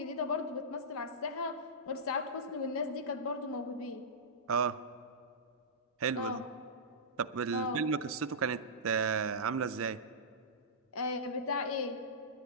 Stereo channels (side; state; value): both; normal; correlation -0.17